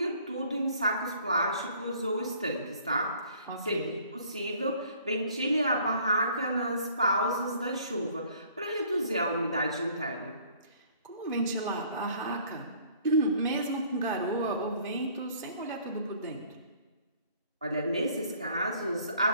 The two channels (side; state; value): both; inverted; correlation -0.57